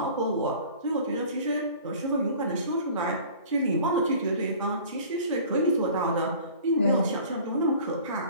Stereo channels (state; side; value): inverted; both; correlation -0.46